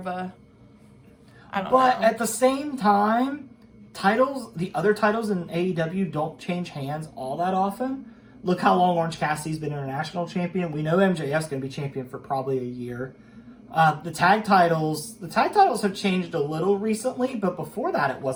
a, I don't know. But at the same time, the other titles in AEW don't change hands all that often. Look how long Orange Cassidy's been international champion. We know MJF's going to be champion for probably a year. The tag titles have changed a little recently, but before that it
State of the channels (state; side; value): identical; both; correlation 1.00